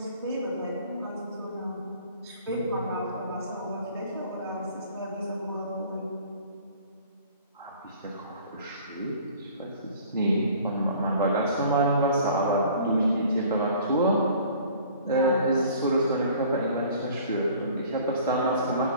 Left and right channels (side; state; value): both; inverted; correlation -0.50